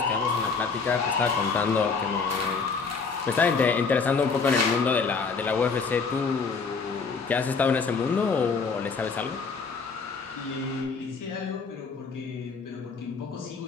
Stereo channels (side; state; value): right; quieter; 4.9 dB